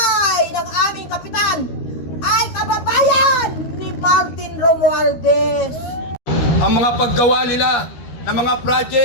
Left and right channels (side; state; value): right; late; 13 ms